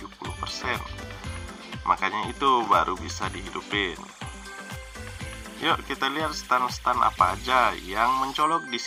Makanya itu baru bisa dihidupin. Yuk kita lihat stand-stand apa aja yang mencolok di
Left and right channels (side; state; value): both; identical; correlation 1.00